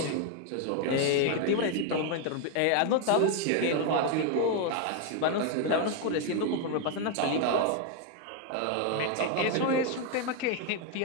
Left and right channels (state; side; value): different; both; correlation 0.01